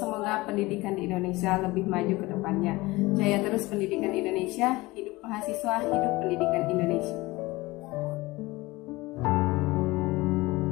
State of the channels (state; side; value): quieter; right; 21.0 dB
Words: pendidikan di Indonesia lebih maju ke depannya. Jaya terus pendidikan Indonesia. Hidup mahasiswa, hidup pendidikan Indonesia.